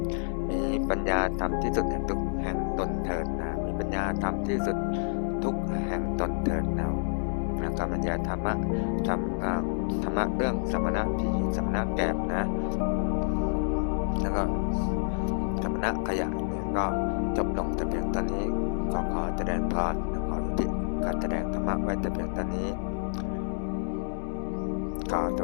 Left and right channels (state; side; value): silent; right; digital silence